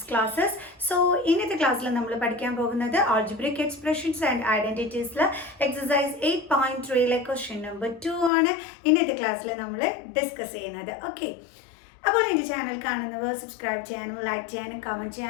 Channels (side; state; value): right; drops out; at 8.3 s